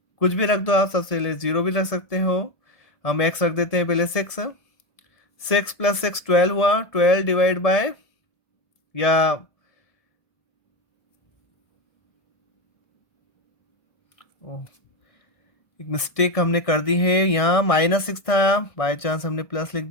कुछ भी रख दो आप, सबसे पहले 0 भी रख सकते हो। हम x रख देते हैं पहले 6। 6 + 6 12 हुआ, 12 डिवाइड बाय, या एक मिस्टेक हमने कर दी है, यहाँ -6 था, बाय चांस हमने प्लस लिख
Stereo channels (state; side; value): late; right; 1.7 ms